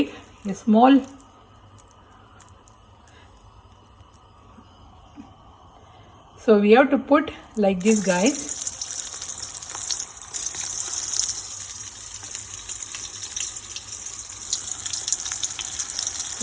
a small So we have to put like this guys.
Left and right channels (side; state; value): both; identical; correlation 1.00